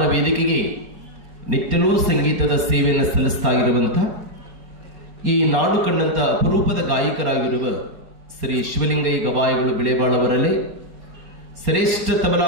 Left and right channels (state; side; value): late; left; 4.3 ms